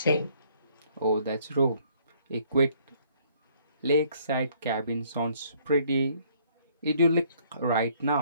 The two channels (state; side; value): inverted; both; correlation -0.63